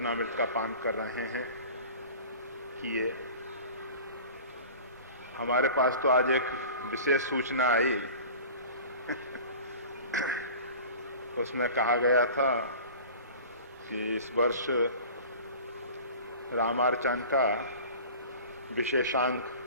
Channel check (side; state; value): both; inverted; correlation -0.40